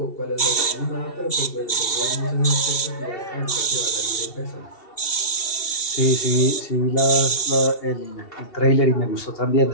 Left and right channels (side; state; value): right; late; 2.7 ms